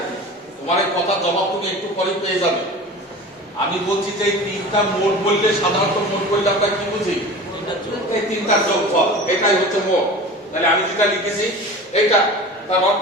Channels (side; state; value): both; normal; correlation 0.36